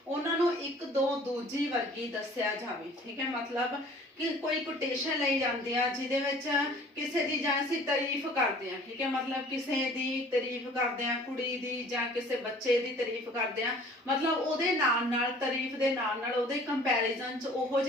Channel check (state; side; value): normal; both; correlation 0.50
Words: ਉਹਨਾਂ ਨੂੰ ਇੱਕ ਦੋ ਦੂਜੀ ਵਰਗੀ ਦੱਸਿਆ ਜਾਵੇ, ਠੀਕ ਹੈ, मतलब कि कोई कोटेशन लाई जाती है जिहदे विच किसी दी जां असीं तारीफ करते हैं, ठीक है, मतलब किसी दी तारीफ करते हैं, कुड़ी दी जां किसी बच्चे दी तारीफ करते हैं, मतलब उहदे नाल नाल तारीफ दे नाल नाल उहदे कंपैरिजन च उहो